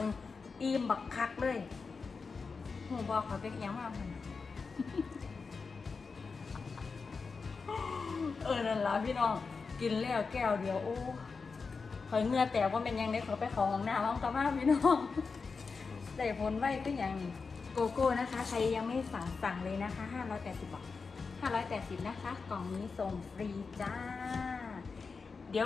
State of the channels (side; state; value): right; quieter; 4.8 dB